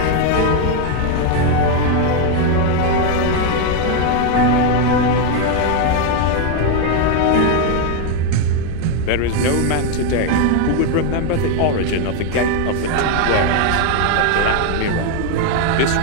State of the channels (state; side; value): different; both; correlation 0.01